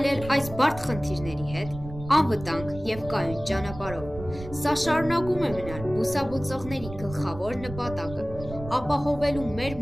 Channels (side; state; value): right; noise; rumble, 13 dB below the sound